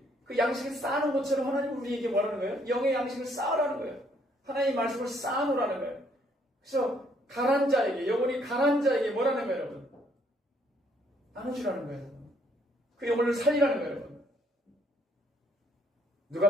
그 양식을 쌓는 것처럼 하나님 우리에게 뭐라는 거예요? 영의 양식을 쌓으라는 거예요. 하나님의 말씀을 쌓아놓으라는 거예요. 그래서 가난 자에게, 영혼이 가난 자에게 뭐라는 거예요, 여러분? 나눠주라는 거예요. 그 영혼을 살리라는 거예요, 여러분.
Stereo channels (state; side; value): normal; both; correlation 0.67